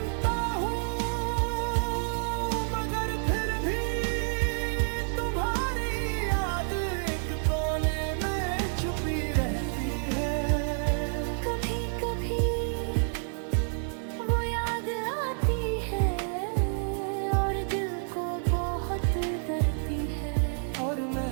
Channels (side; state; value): left; silent; 59 dB below the other